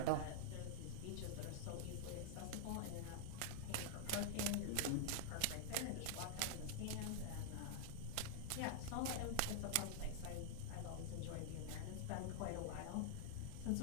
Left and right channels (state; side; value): different; both; correlation -0.01